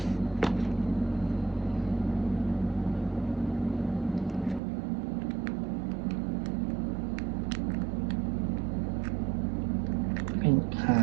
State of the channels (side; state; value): left; drops out; at 4.6 s